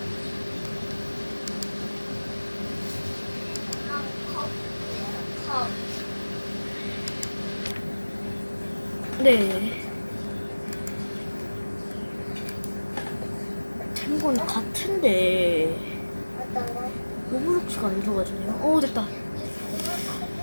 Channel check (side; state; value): both; inverted; correlation -1.00